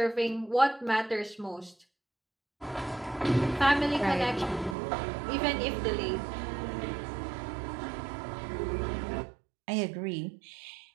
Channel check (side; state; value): left; drops out; at 4.8 s